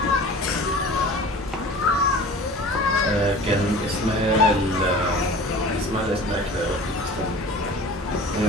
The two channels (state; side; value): normal; both; correlation 0.40